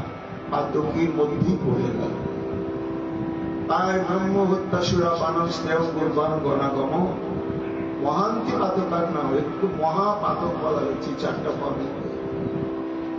পাতকীর মধ্যেই পড়ে গেল। তাই ব্রহ্ম হত্যা সুরাপান স্নেহ পূর্বাঙ্গনাগম মহান্তি পাতকার নাম, একটু মহাপাতক বলা হচ্ছে চারটা পদে।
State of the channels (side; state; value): both; identical; correlation 1.00